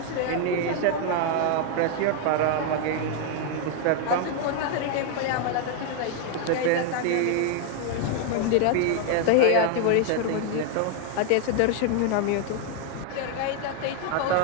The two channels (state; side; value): different; both; correlation 0.00